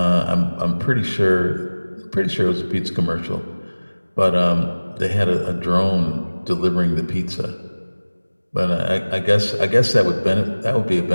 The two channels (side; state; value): both; inverted; correlation -1.00